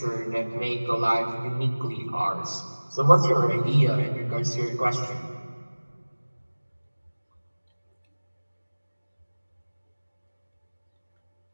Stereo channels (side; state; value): both; inverted; correlation -1.00